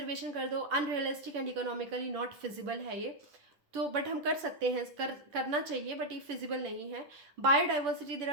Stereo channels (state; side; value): late; left; 10 ms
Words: कर दो, unrealistic and economically not feasible है ये, तो बट हम कर सकते हैं, करना चाहिए, बट ये फिजिबल नहीं है। Biodiversity, there